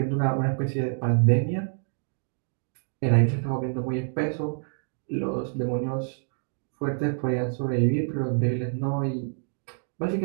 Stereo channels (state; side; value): silent; left; digital silence